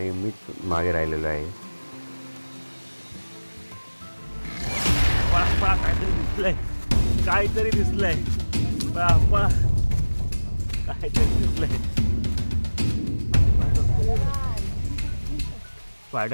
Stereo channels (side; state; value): both; inverted; correlation -1.00